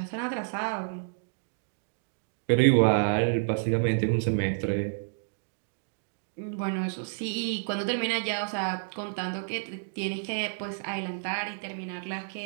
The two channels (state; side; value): silent; left; digital silence